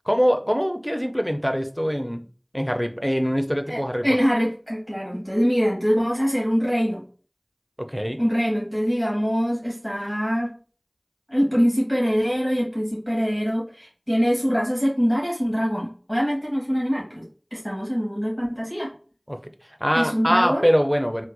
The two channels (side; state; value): both; identical; correlation 1.00